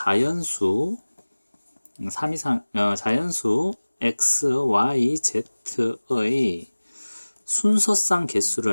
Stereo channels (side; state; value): both; inverted; correlation -1.00